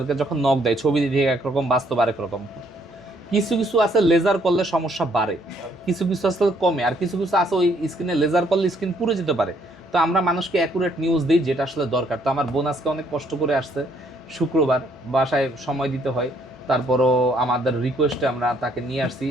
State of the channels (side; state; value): both; normal; correlation 0.67